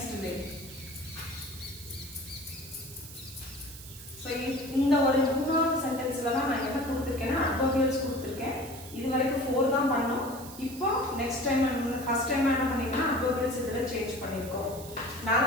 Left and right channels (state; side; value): noise; right; hiss, 15 dB below the sound